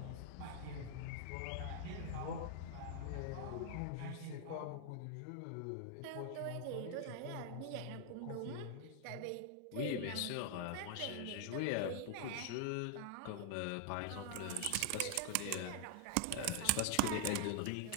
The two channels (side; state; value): both; different; correlation 0.00